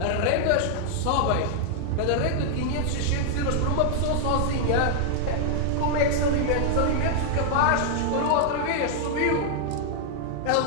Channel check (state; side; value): different; both; correlation -0.01